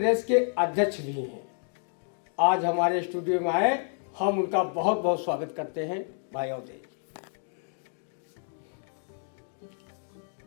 के अध्यक्ष भी हैं। आज हमारे स्टूडियो में आए, हम उनका बहुत बहुत स्वागत करते हैं। भाई अवधेश जी,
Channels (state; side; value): silent; right; 58 dB below the other